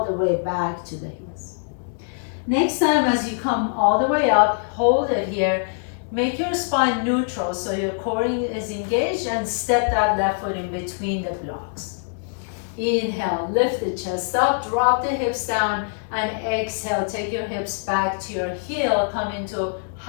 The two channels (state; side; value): silent; right; digital silence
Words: the way back to the heels. Next time, as you come all the way up, hold it here. Make your spine neutral so your core is engaged, and step that left foot in between the blocks. Inhale, lift the chest up, drop the hips down, and exhale, take your hips back to your heel. Come into